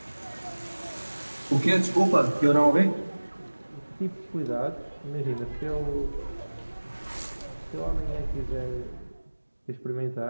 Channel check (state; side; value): inverted; both; correlation -1.00